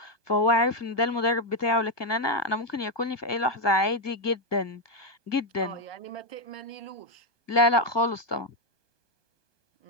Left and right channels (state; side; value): late; right; 1.2 ms